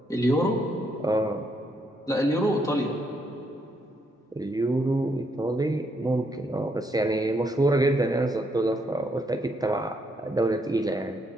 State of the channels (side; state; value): both; normal; correlation 0.75